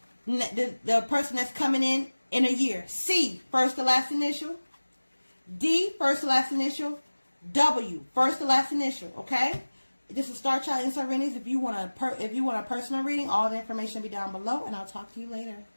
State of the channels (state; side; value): inverted; both; correlation -1.00